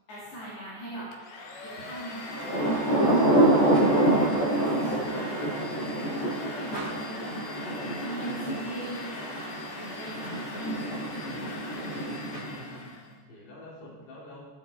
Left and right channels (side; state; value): right; late; 14 ms